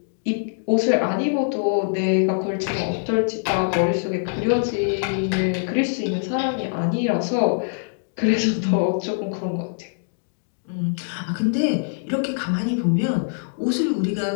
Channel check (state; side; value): silent; right; digital silence